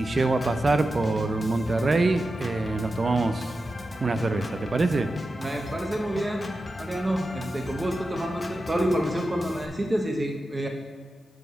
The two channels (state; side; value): normal; both; correlation 0.91